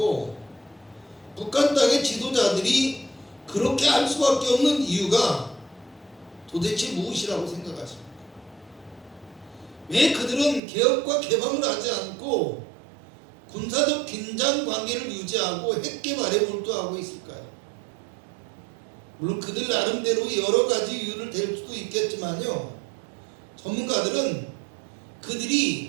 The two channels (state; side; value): drops out; left; at 10.6 s